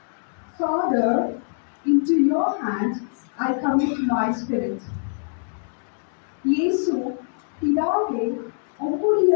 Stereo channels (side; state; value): right; silent; digital silence